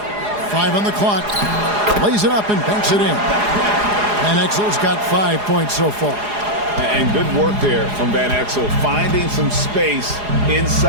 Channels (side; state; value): left; late; 4.8 ms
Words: 5 on the clock. Lays it up and banks it in. Van Exel's got 5 points so far. And good work there from Van Exel, finding some space